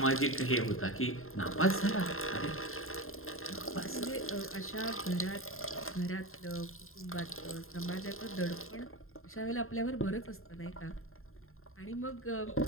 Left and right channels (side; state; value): right; late; 0.61 ms